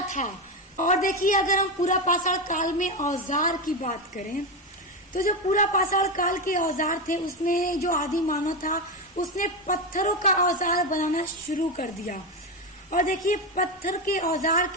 था। और देखिए, अगर हम पूरा पाषाण काल में औजार की बात करें तो जो पूरा पाषाण काल के औजार थे, उसमें जो आदि मानव था उसने पत्थरों का औजार बनाना शुरू कर दिया। और देखिए, पत्थर के औजार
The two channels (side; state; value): both; normal; correlation 0.13